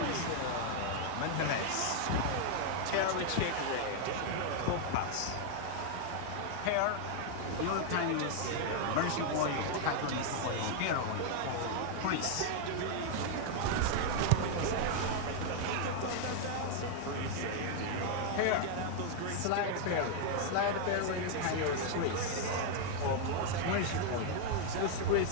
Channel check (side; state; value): both; different; correlation 0.00